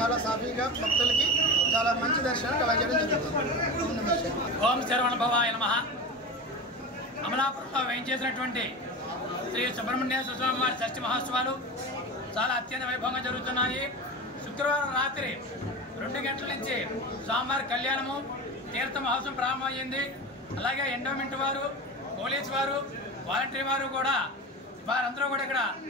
సాఫీగా భక్తులకి చాలా మంచి దర్శనం కలగజేయడం జరుగుతుంది. ఓం శరవణ భవాయ నమః. అమలాపురంలో వేయించేసినటువంటి శ్రీ సుబ్రహ్మణ్యేశ్వర స్వామి వారి షష్ఠి మహోత్సవాలు చాలా అత్యంత వైభవంగా జరుగుతున్నాయి. శుక్రవారం రాత్రి 2 గంటల నుంచి స్వామివారి కళ్యాణము, తీర్థ మహోత్సవం ప్రారంభమైంది. అలాగే ఎండోమెంట్ వారు, పోలీసు వారు, వాలంటరీ వారు కూడా వారందరూ కూడా ఇక్కడ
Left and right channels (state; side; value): normal; both; correlation 0.27